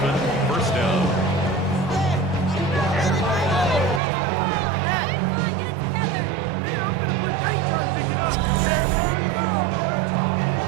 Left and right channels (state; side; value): drops out; left; at 4.0 s